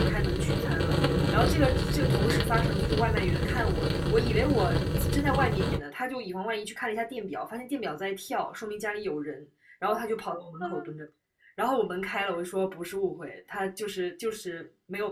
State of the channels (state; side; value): identical; both; correlation 1.00